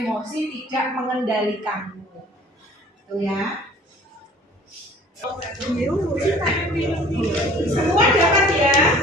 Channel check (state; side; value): normal; both; correlation 0.50